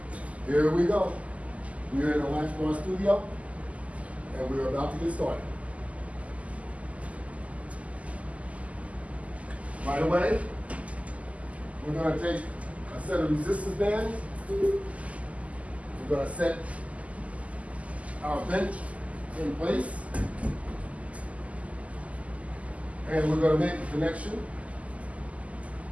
here we go. We're in the Latchbar studio and we're about to get started. Right away, we're going to take a set of resistance bands. We're going to set our bench in place and we're going to make a connection.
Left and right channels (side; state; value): left; late; 0.069 ms